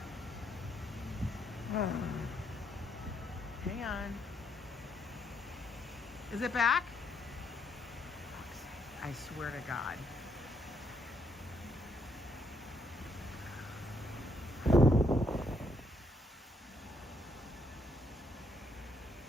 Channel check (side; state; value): both; normal; correlation 0.74